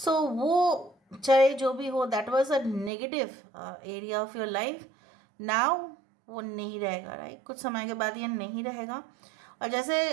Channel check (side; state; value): left; drops out; at 2.9 s